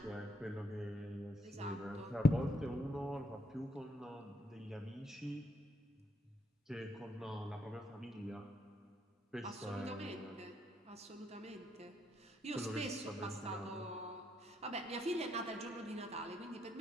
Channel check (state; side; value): normal; both; correlation 0.75